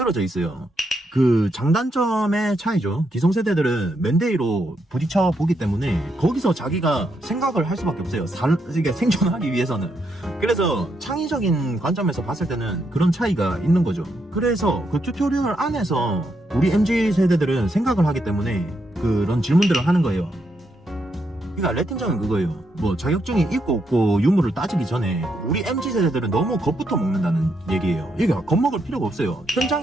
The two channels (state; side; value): normal; both; correlation 0.79